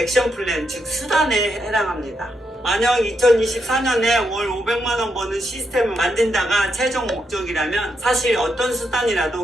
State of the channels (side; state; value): both; normal; correlation 0.81